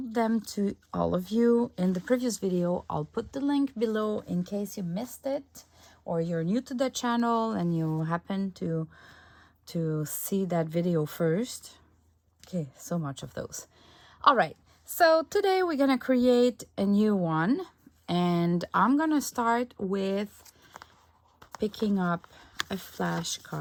them to all of you in the previous video. I'll put the link below in case you missed it or you're new to the channel and you happen to see that video first. Okay, so much of those. All right, so today we're gonna create a new one, and I'm gonna start with picking up a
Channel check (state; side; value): identical; both; correlation 1.00